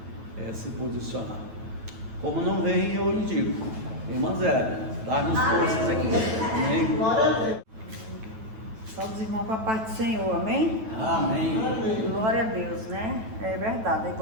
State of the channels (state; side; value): late; left; 9.1 ms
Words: se posicionar. Como não vem, eu indico. Irmã Zélia, dá-nos forças aqui. Amém? Só dos irmãos com a paz do Senhor, amém? Amém. Glória a Deus, né? É verdade,